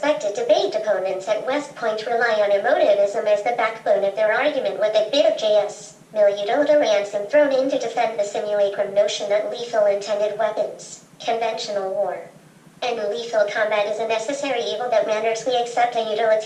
debate opponents at West Point rely on emotivism as the backbone of their argument with a bit of JS. Miliudota ransom thrown in to defend the simulacrum notion that lethal intended weapons, conventional war, And lethal combat is a necessary evil that renders we accept a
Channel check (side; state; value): both; identical; correlation 1.00